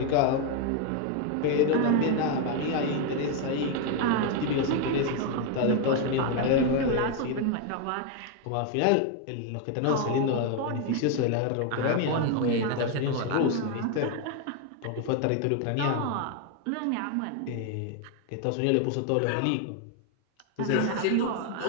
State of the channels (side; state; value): both; different; correlation 0.01